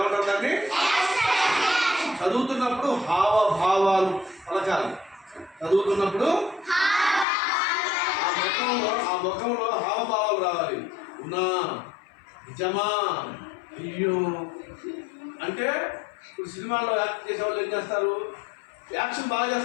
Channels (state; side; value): drops out; right; at 7.2 s